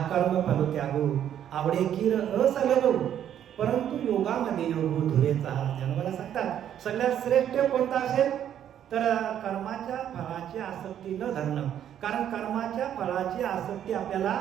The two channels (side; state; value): left; quieter; 10.2 dB